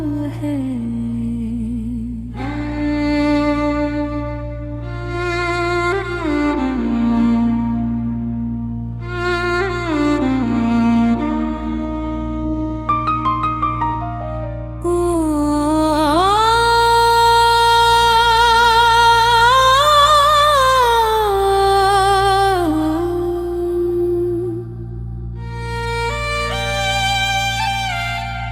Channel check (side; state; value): both; identical; correlation 1.00